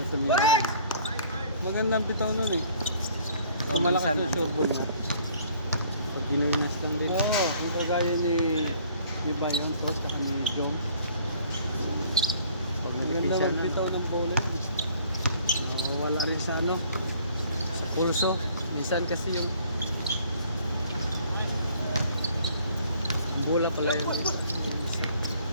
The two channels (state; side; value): inverted; both; correlation -0.56